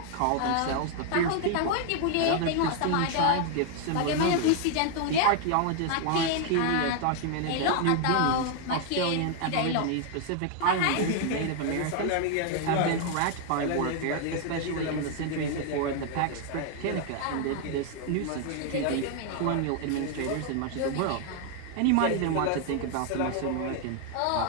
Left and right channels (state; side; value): different; both; correlation 0.00